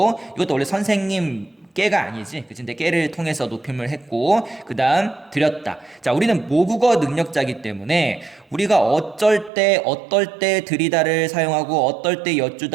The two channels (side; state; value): left; drops out; at 9.5 s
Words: 이것도 원래 선생님 깨가 아니지. 그치? 근데 깨를 통해서 높임을 했고, 그 다음 드렸다. 자, 우리는 모국어 능력자이기 때문에 우리가 어떨 때 드리다를 사용하고, 어떨 때